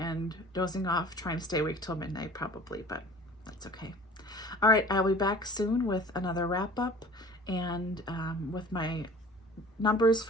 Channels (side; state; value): both; normal; correlation 0.45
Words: dozing off, trying to stay awake till midnight probably, but that's okay. All right, I'll be back soon with another wrap up and with my numbers